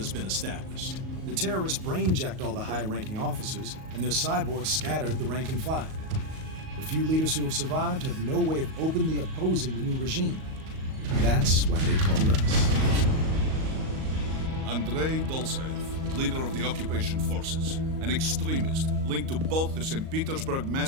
been established. The terrorists brain-jacked all the high-ranking officers, and their cyborgs scattered the rank and file. The few leaders who have survived have no way of openly opposing the new regime. That's why they called us. Andrei Dolzaev, leader of the occupation forces, an extremist linked to both the St. Petersburg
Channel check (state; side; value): late; left; 38 ms